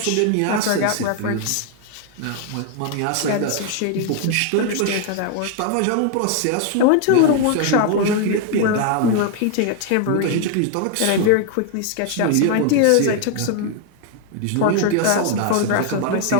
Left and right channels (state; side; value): different; both; correlation 0.00